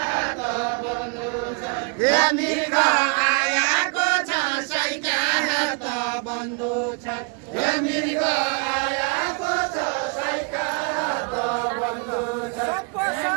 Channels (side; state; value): left; quieter; 37.0 dB